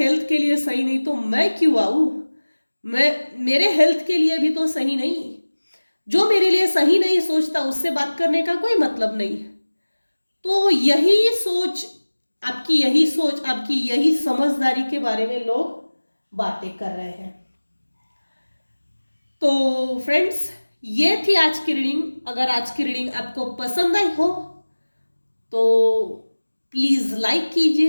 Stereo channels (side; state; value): both; inverted; correlation -1.00